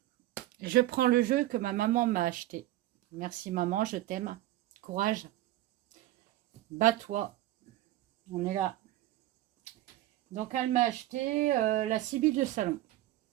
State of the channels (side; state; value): left; quieter; 15.4 dB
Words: je prends le jeu que ma maman m'a acheté. Merci maman, je t'aime. Courage. Bats-toi. On est là. Donc, elle m'a acheté la Sibylle de Salon.